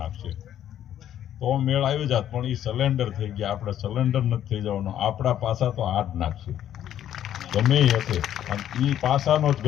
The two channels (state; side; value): quieter; right; 10.9 dB